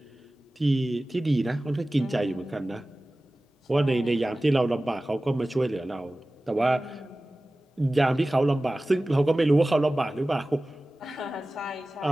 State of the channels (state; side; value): normal; both; correlation 0.97